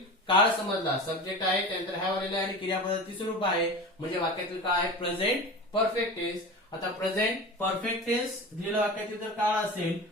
काळ समजला, सब्जेक्ट आहे, त्यानंतर हॅव आलेला आहे आणि क्रियापदाचं तिसरं रूप आहे म्हणजे वाक्यातील काय आहे? Present perfect tense. आता प्रेझेंट परफेक्ट टेन्स दिलेल्या वाक्यातील जर काळ असेल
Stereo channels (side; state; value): both; normal; correlation 0.31